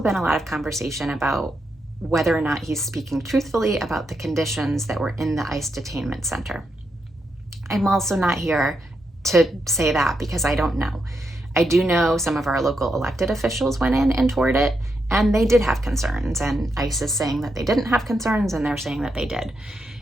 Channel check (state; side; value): normal; both; correlation 0.83